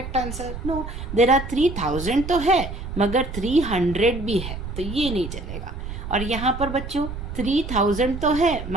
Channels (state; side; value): noise; right; rumble, 8 dB below the sound